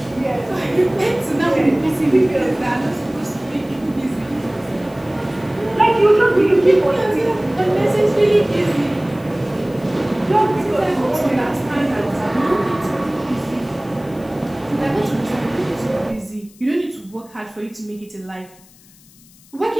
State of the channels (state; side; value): noise; left; hiss, 26 dB below the sound